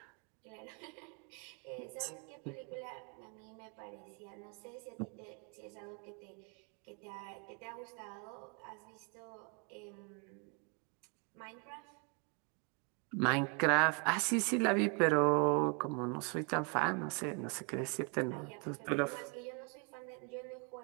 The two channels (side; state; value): left; quieter; 34.1 dB